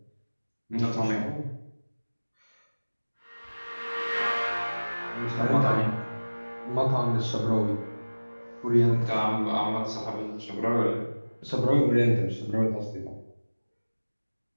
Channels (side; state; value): both; inverted; correlation -1.00